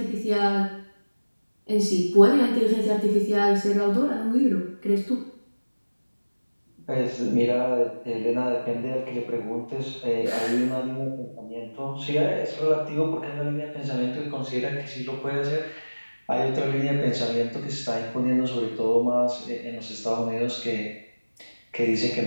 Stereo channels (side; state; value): both; inverted; correlation -1.00